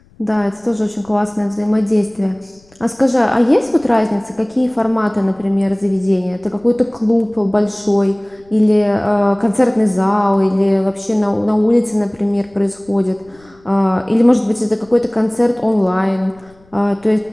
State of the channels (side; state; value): left; noise; rumble, 30 dB below the sound